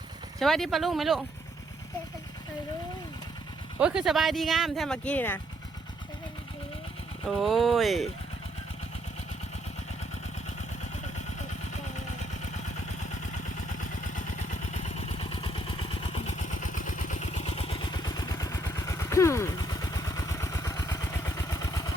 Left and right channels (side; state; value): both; normal; correlation 0.71